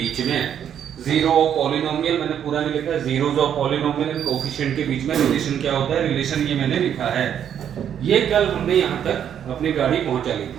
में। जीरो ऑफ पॉलिनोमियल मैंने पूरा नहीं लिखा है, zeros of polynomial and coefficient के बीच में रिलेशन क्या होता है, रिलेशन ये मैंने लिखा है। ये कल हमने यहाँ तक अपनी गाड़ी पहुंचा ली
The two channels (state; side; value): quieter; left; 9.2 dB